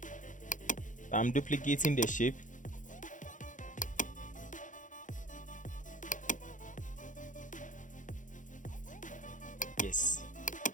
I'm duplicating the shape. Yes,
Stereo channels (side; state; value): right; late; 0.37 ms